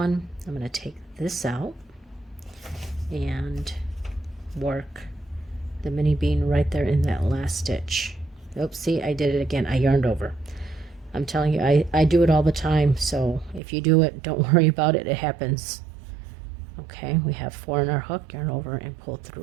I'm going to take this out and work the mini bean right there in that last stitch. Oops, see, I did it again. I yarned over. I'm telling you, I do it all the time, so if you do it, don't worry about it. It happens. Okay, we have 4 in our hook, yarn over, and pull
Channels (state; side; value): drops out; left; at 13.6 s